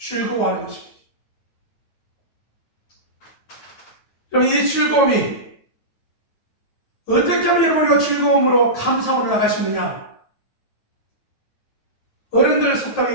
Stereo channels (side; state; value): right; late; 9.2 ms